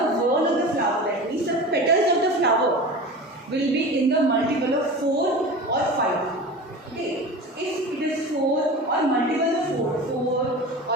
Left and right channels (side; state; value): both; normal; correlation 0.32